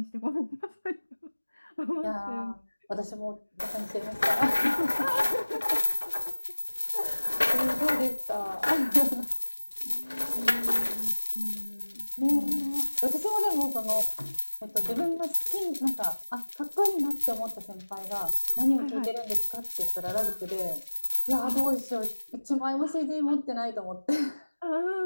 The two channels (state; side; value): inverted; both; correlation -1.00